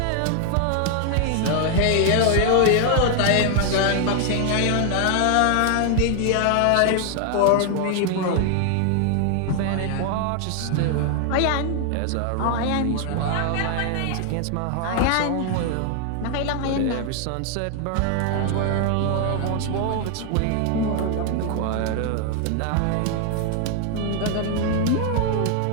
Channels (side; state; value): both; different; correlation 0.00